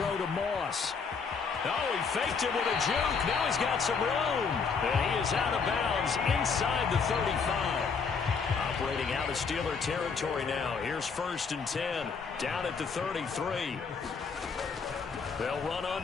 to Moss. Oh, he faked it with a juke. Now he's got some room. And he is out of bounds inside the 35. Operating out of Steeler territory now. Here's 1st and 10. Down at the 33. They'll run on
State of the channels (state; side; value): quieter; right; 5.4 dB